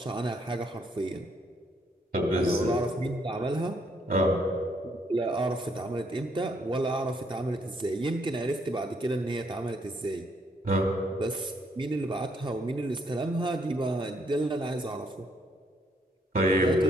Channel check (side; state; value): both; normal; correlation 0.71